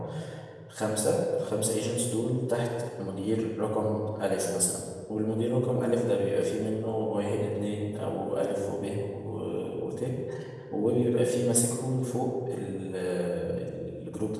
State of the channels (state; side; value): identical; both; correlation 1.00